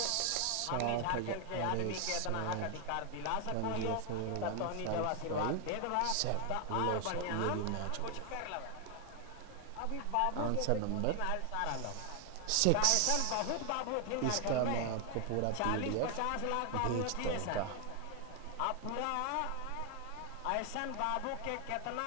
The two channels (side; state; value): both; different; correlation 0.00